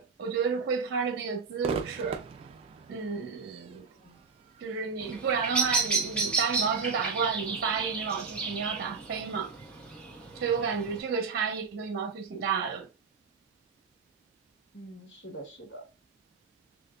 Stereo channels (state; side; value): quieter; left; 5.0 dB